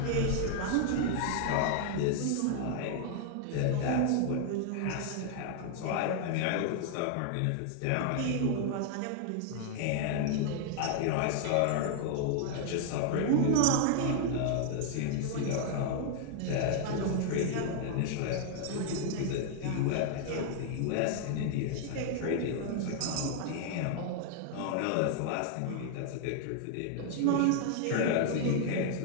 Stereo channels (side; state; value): both; different; correlation 0.00